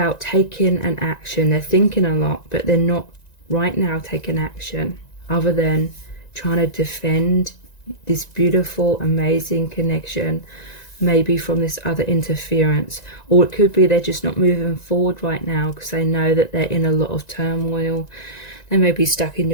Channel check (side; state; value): right; late; 1.9 ms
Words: taking an action. They're thinking a lot, but they're not right now taking action other than trying to defend this beautiful, amazing connection maybe from this other interference, or it could be they're just not moving forward right now because they know that they're in a lot of turmoil. They may be stuck in